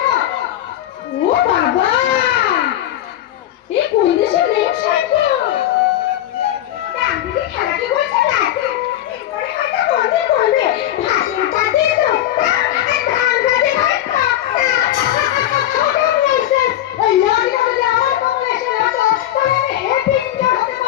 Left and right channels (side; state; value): right; quieter; 12.7 dB